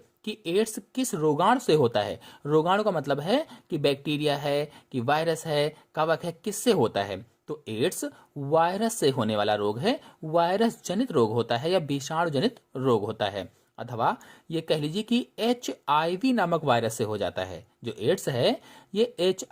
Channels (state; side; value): identical; both; correlation 1.00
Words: कि एड्स किस रोगाणु से होता है। रोगाणु का मतलब है कि बैक्टीरिया है, कि वायरस है, कवक है, किससे होता है। तो एड्स वायरस से होने वाला रोग है, वायरस जनित रोग होता है या विषाणु जनित रोग होता है। अथवा ये कह लीजिए कि HIV नामक वायरस से हो जाता है। जो एड्स है ये